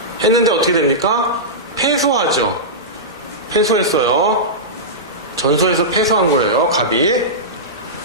했는데 어떻게 됩니까? 패소하죠. 패소했어요. 전소해서 패소한 거예요. 갑이.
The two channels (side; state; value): both; normal; correlation -0.15